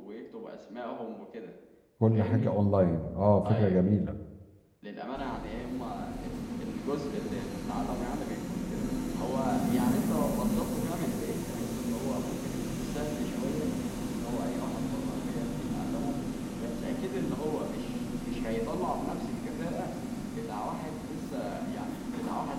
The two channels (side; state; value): both; identical; correlation 1.00